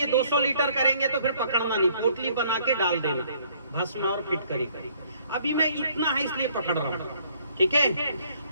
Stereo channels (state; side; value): inverted; both; correlation -0.63